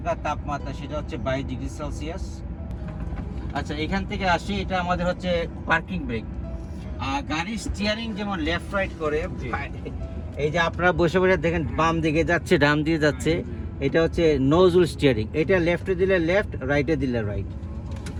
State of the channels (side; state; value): both; identical; correlation 1.00